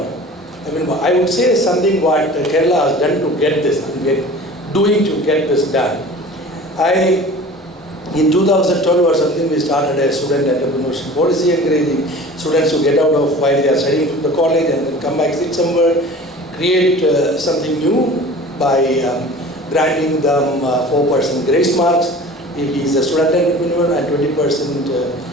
I mean, I would say something what Kerala has done to get this, doing to get this done. In 2012 or something, we started a student entrepreneurship policy, encouraging students to get out of while they are studying from the college and then come back, sit somewhere, create something new by granting them 4% grace marks if he is a student entrepreneur and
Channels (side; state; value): both; normal; correlation 0.41